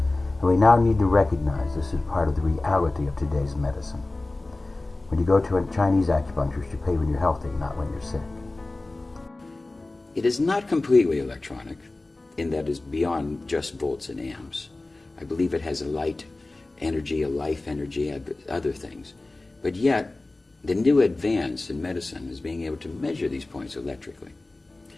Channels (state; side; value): quieter; right; 3.0 dB